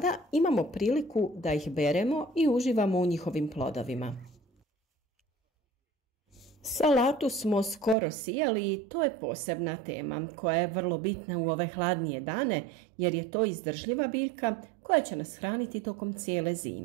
imamo priliku da ih beremo i uživamo u njihovim plodovima. Salatu smo skoro sijali i to je posebna tema koja je vrlo bitna u ove hladnije dane jer je to izdržljiva biljka koja će nas hraniti tokom cijele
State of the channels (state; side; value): drops out; left; at 8.0 s